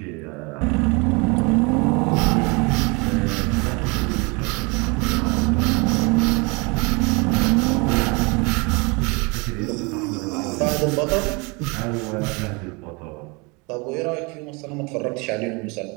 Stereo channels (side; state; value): left; quieter; 28.7 dB